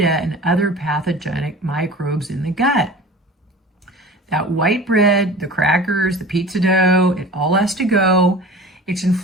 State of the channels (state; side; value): normal; both; correlation 0.38